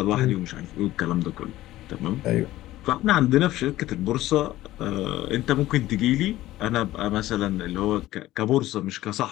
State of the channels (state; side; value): quieter; right; 15.7 dB